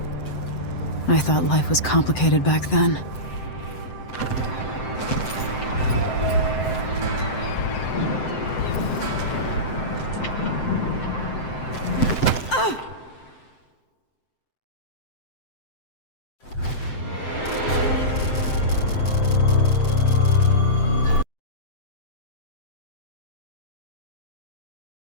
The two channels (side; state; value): right; late; 7.7 ms